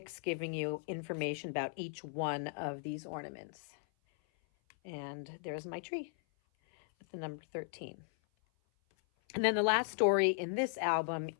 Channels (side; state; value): right; silent; 53 dB below the other